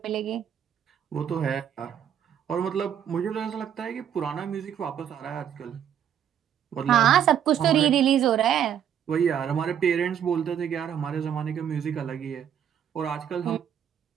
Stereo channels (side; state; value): left; quieter; 9.2 dB